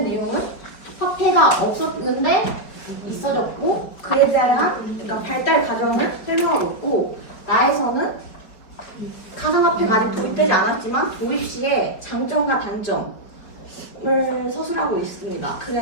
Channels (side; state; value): right; late; 4.9 ms